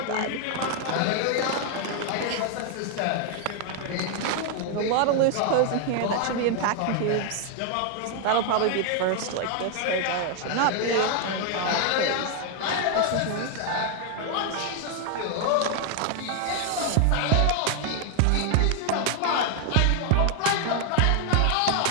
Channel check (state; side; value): different; both; correlation 0.00